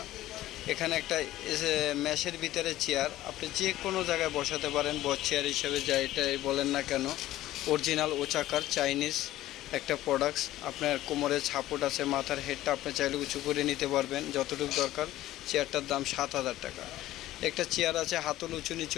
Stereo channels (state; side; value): quieter; right; 15.0 dB